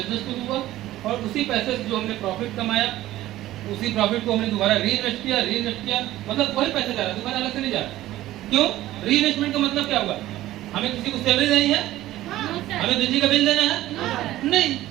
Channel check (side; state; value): left; quieter; 15.1 dB